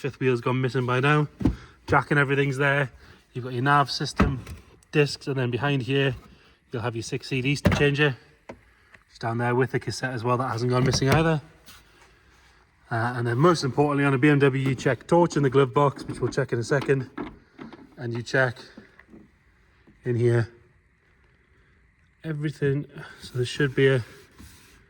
wheel's gone missing by now. Jack and everything's there. You've got your nav system, discs, and then behind here you'll have your 6 CD changer. It's down there with the cassette as well, that hasn't gone missing either. And then most importantly on a BMW you check torch in the glove box, which we'll check in a second, and you check in here everything. So there should be a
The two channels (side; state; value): both; identical; correlation 1.00